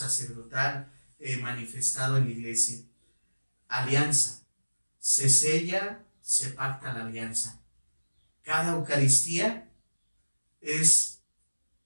manifestado en la Iglesia. Alianza. Se sella, se pacta la alianza. Cada Eucaristía es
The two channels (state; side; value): inverted; both; correlation -1.00